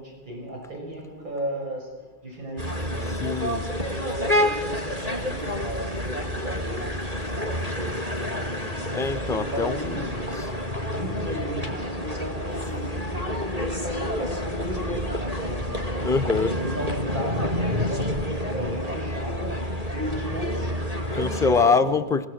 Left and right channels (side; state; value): left; late; 2.3 ms